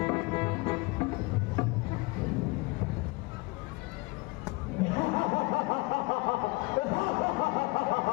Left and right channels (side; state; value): right; quieter; 24.9 dB